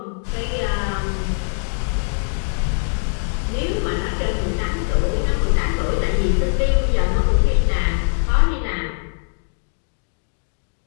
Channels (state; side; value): silent; right; 57 dB below the other